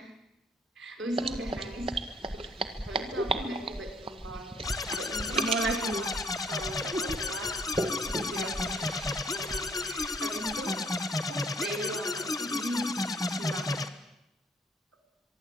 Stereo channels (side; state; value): both; normal; correlation 0.63